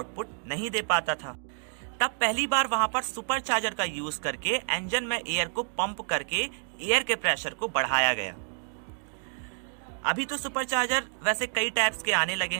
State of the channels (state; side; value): silent; left; digital silence